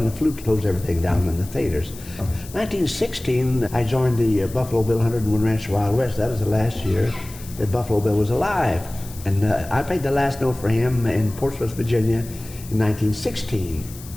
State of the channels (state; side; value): noise; left; hiss, 17 dB below the sound